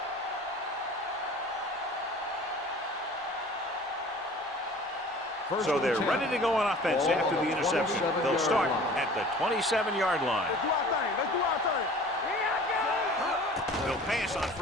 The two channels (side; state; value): both; normal; correlation 0.45